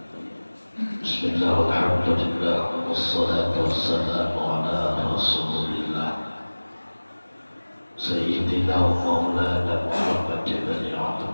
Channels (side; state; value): both; inverted; correlation -1.00